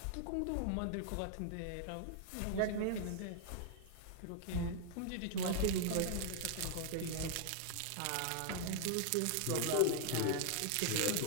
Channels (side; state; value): both; different; correlation 0.00